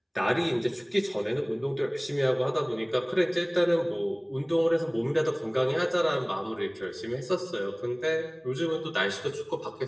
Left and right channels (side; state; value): both; identical; correlation 1.00